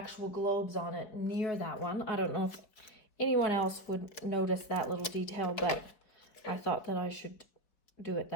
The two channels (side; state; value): right; late; 4.6 ms